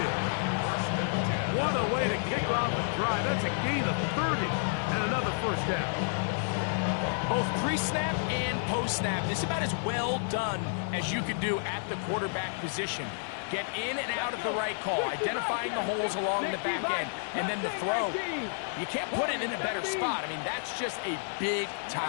What a way to kick off the drive. That's a gain of 30 and another 1st down. Both pre-snap and post-snap, this is about as well done as you can do at the quarterback position. Get in and out of the right call, identifying the holes along the back end, and then the throw. You can't put it in a better spot. I mean, that's just a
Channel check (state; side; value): silent; right; 57 dB below the other